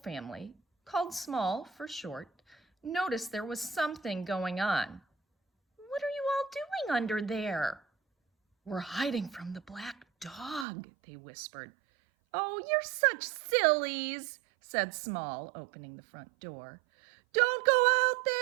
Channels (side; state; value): left; drops out; at 10.7 s